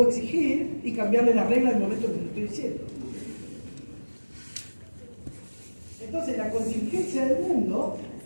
exigir y cambiarle las reglas en el momento que les estoy diciendo. Entonces, la contingencia del mundo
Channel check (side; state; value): both; inverted; correlation -1.00